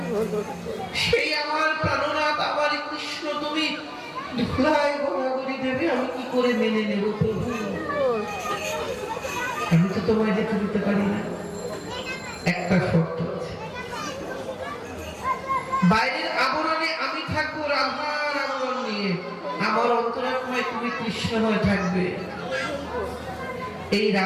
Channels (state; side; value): identical; both; correlation 1.00